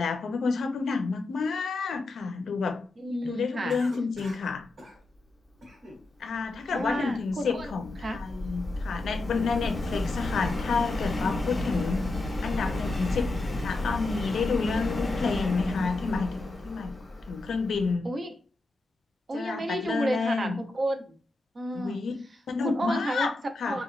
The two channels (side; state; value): right; quieter; 3.0 dB